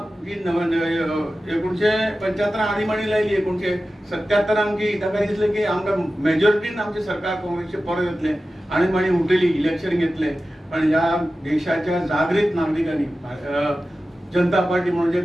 जी 1975 आणीबाणी लायली 1977 की ताका दिसलें की आमकां मेजॉरिटीन आमचें सरकार काँग्रेसचें परत येतलें आणीबाणी उठयली इलेक्शन घेतलें पण ह्या देशाच्या जागृत नागरिकांनी जनता पार्टी म्हणून जे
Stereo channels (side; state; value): both; normal; correlation 0.94